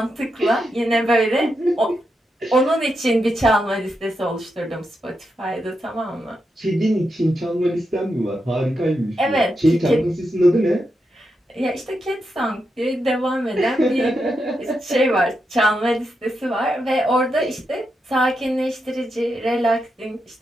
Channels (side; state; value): both; normal; correlation 0.85